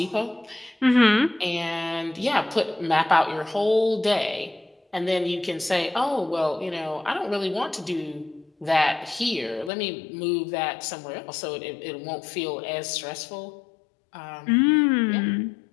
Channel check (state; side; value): drops out; right; at 9.7 s